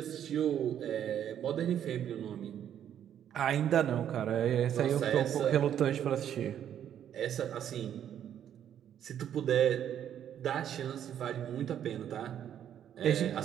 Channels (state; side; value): quieter; left; 9.9 dB